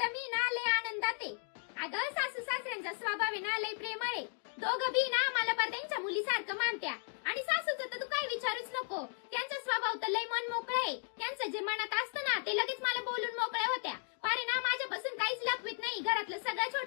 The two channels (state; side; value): silent; right; 54 dB below the other